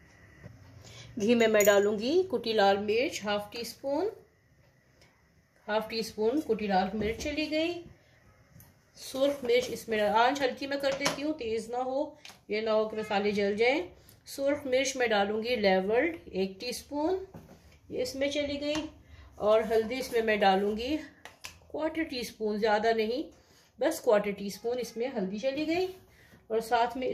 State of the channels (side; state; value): both; identical; correlation 1.00